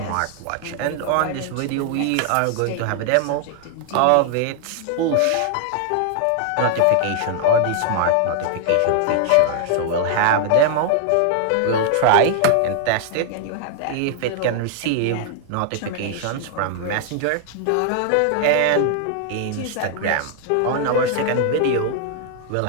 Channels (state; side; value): different; both; correlation 0.00